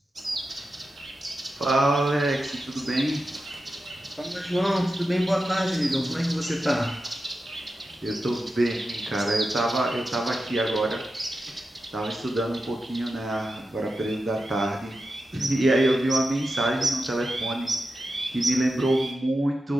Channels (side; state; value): both; normal; correlation 0.91